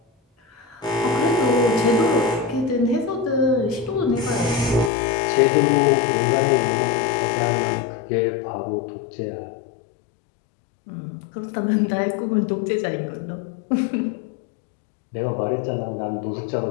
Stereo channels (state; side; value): drops out; right; at 4.9 s